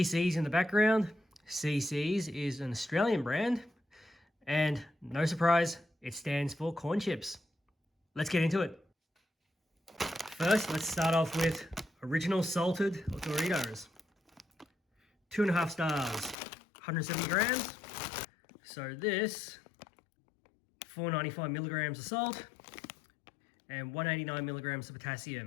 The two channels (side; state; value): right; drops out; at 16.4 s